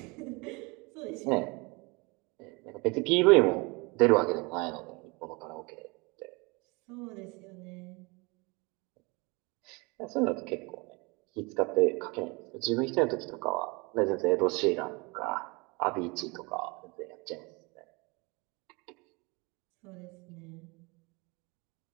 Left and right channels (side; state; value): left; quieter; 27.5 dB